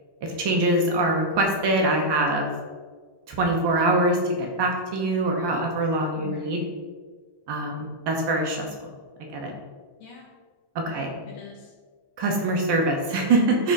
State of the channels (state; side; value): late; left; 1.2 ms